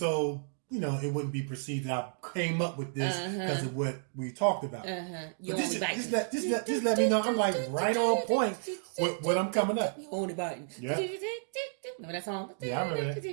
it wouldn't be perceived that I came up with this because of what we talked about. You But just let me know I'm like right on point with what I'm coming up. You only biting. Yeah. Remember that song? Yeah, I remember that.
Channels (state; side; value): silent; left; digital silence